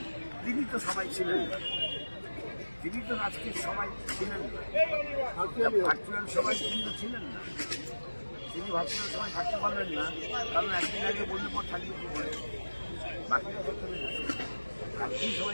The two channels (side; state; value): both; inverted; correlation -1.00